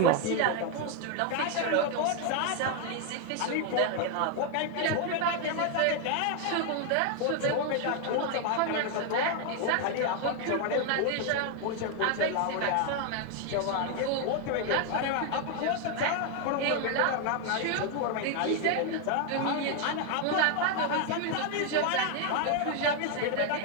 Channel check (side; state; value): both; different; correlation 0.01